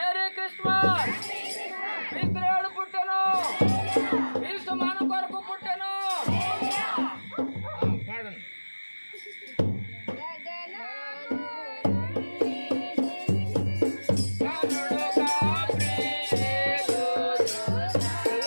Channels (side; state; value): both; inverted; correlation -1.00